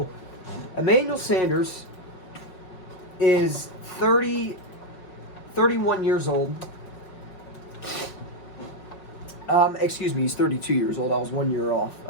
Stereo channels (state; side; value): late; right; 5.5 ms